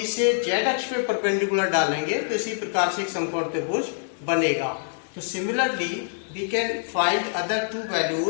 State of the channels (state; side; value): silent; right; digital silence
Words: से z अक्ष पे परपेंडिकुलर डालेंगे तो इसी प्रकार से एक समकोण त्रिभुज बनेगा। तो similarly we can find other two